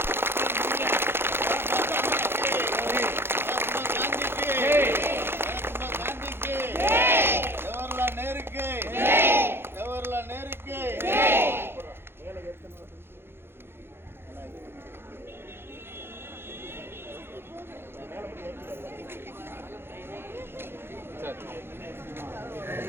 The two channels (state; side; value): late; left; 0.11 ms